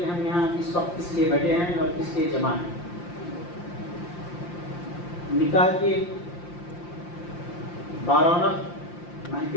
ہم یہاں اس وقت کس لیے بیٹھے ہیں اور کس لیے جمع ہیں. نکاح کی 12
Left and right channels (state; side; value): late; right; 5.8 ms